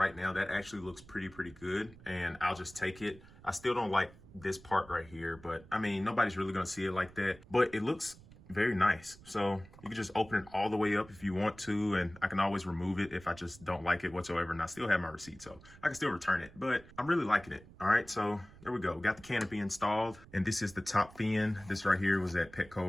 now, that actually looks pretty good, and I'll just take it. I still don't like this part right here, but I mean, nobody's really gonna see it like that, but it looks very nice. So you can just open it all the way up if you want to, and I can always remove it if I just don't like it whatsoever, and I still have my receipt, so I can still return it, but I'm really liking it. All right, so there we go. We got the canopy installed, and this is the top fin. This right here was at Petco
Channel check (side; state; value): right; noise; rumble, 21 dB below the sound